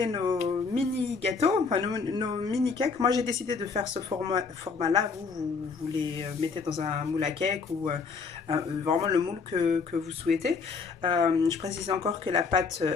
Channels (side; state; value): right; quieter; 5.0 dB